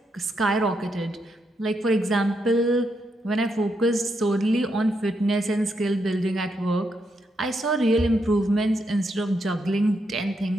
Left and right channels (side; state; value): both; normal; correlation 0.80